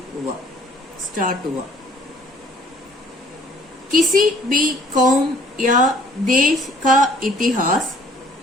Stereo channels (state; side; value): normal; both; correlation 0.57